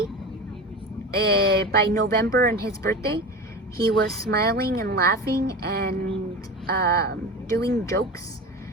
By November and his birthday, he was smiling and laughing and doing jokes,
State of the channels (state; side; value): normal; both; correlation 0.29